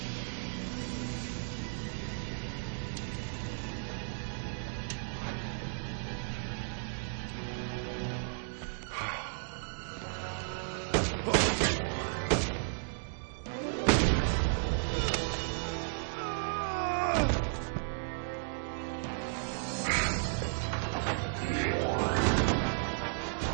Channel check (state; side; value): silent; left; digital silence